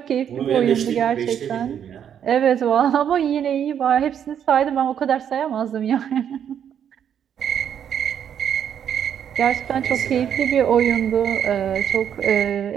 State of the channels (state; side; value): quieter; left; 8.9 dB